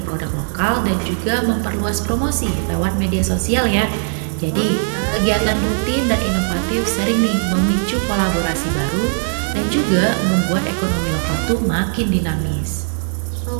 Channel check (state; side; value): silent; left; 60 dB below the other